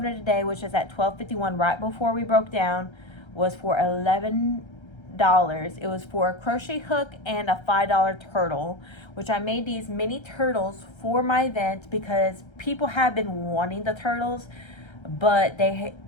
today, which is at $12.51, right before we broke down, was for $11. It was for a crochet hook and a $5 turtle, which I made these mini turtles for my event because people have been wanting the turtles, but they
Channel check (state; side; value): late; right; 1.3 ms